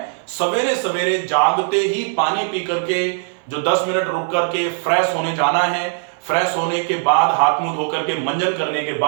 सवेरे सवेरे जागते ही पानी पी करके जो 10 मिनट रुक करके फ्रेश होने जाना है। फ्रेश होने के बाद हाथ मुंह धो करके मंजन करने के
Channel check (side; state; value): left; silent; digital silence